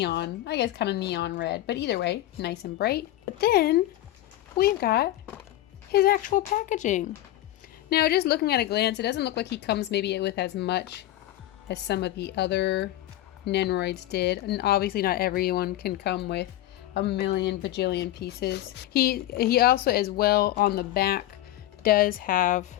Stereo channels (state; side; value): quieter; right; 14.4 dB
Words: I guess kind of neon red, but either way, nice and bright. But then we've got his actual packaging. Now, just looking at a glance, it doesn't look like he comes maybe with as much as some of the other Nendoroids did, and obviously not everyone can come with a million bajillion pieces. He also, as well, on the back does have